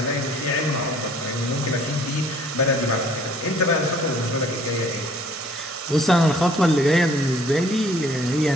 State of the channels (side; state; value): both; normal; correlation 0.57